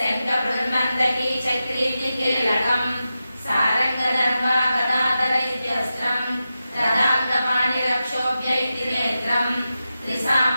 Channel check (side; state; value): both; inverted; correlation -0.91